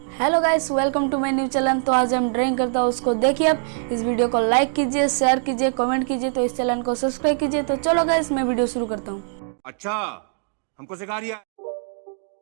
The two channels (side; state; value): left; silent; digital silence